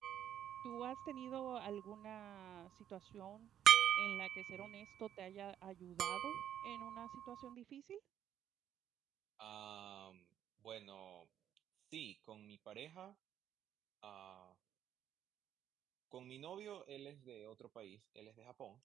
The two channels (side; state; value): left; quieter; 10.3 dB